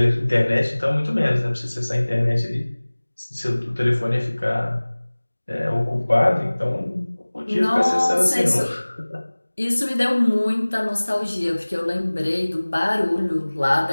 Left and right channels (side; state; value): both; inverted; correlation -1.00